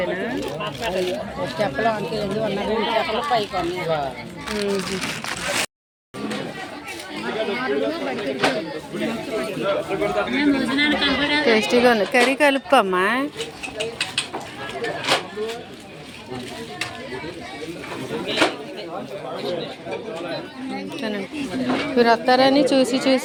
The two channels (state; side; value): identical; both; correlation 1.00